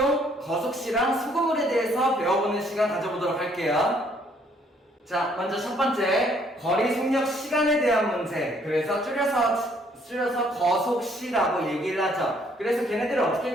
거속시랑 소금물에 대해서 배워보는 시간 가져보도록 할게요. 자, 먼저 첫 번째, 거리, 속력, 시간에 대한 문제. 그래서 줄여서 거속시라고 얘기를 하죠. 그래서 걔네들을 어떻게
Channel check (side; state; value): both; normal; correlation 0.65